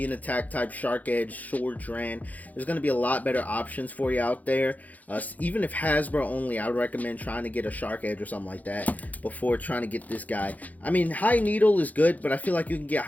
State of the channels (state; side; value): late; right; 0.078 ms